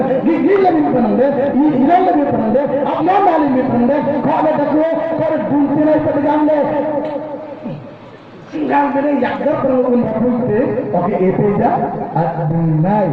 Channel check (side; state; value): both; identical; correlation 1.00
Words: gigil lagi panande ilal lagi panande apna mali me panande khale dakho kar dunte nai padgamle singal bene yakda perun bapuite oke epeja adinai